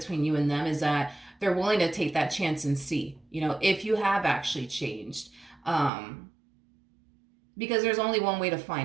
you and them is that they're willing to take that chance and see, if you have actually changed. Because there's only one way to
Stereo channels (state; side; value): drops out; left; at 5.9 s